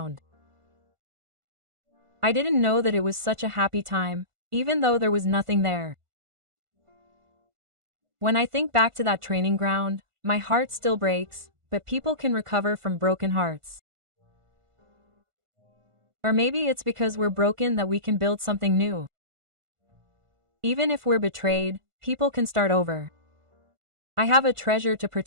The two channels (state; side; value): late; left; 1.5 ms